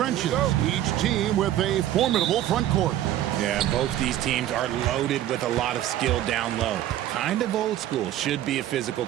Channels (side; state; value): left; quieter; 12.7 dB